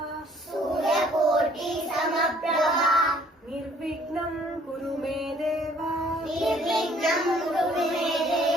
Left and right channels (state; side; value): normal; both; correlation 0.59